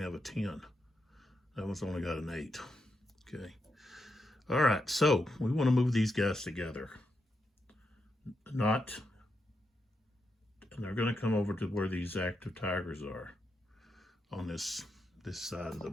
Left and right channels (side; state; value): both; normal; correlation 0.84